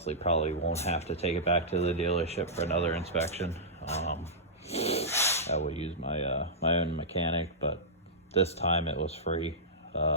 probably won't have to take it back to the dealership for another inspection. I will use my my own mechanic, but this time it was free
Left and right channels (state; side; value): normal; both; correlation -0.14